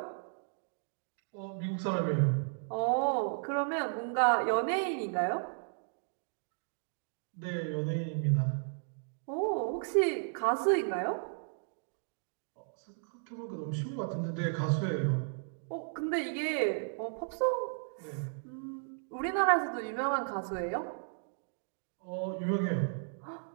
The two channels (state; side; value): silent; left; digital silence